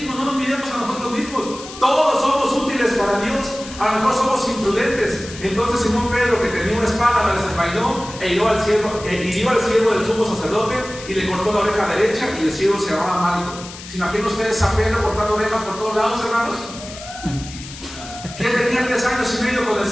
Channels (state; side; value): noise; left; hiss, 14 dB below the sound